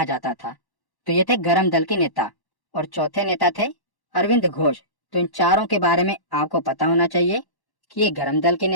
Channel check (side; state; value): right; late; 1.1 ms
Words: जाता था। तो ये थे गरम दल के नेता। और चौथे नेता थे अरविंद घोष। तो इन चारों के बारे में आपको पता होना चाहिए कि ये गरम दल के